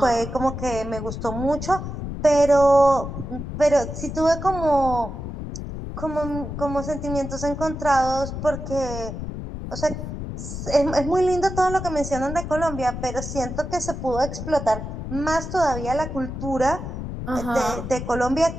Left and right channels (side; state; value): left; noise; rumble, 7 dB below the sound